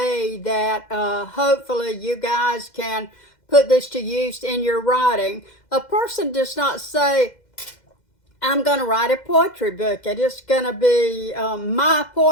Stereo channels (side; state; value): right; late; 2.1 ms